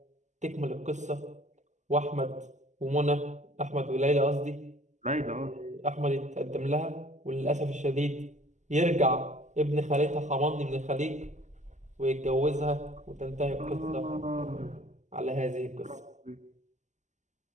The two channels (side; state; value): left; late; 0.34 ms